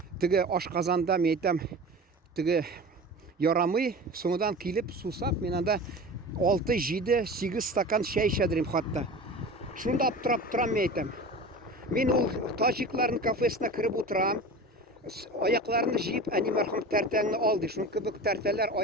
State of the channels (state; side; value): normal; both; correlation 0.34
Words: Теге ашказанда мен әйтәм, теге ярамый, соңдан килеп сусап, мин анда 6, 7, 8 стакан чәй эчәдем хатта. Шунда аптырап торам мен әйтәм. Мин ул таҗикларның кафесына кереп утырам. Аякларны җыеп, әни мәрхүм тәртәңне ал ди. Шуның кебек тәртәләр